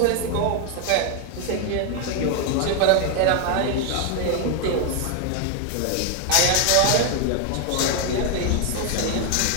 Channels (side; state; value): both; different; correlation 0.01